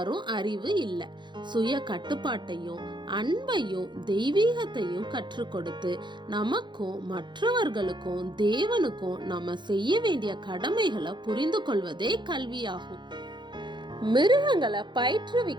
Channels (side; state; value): left; late; 0.22 ms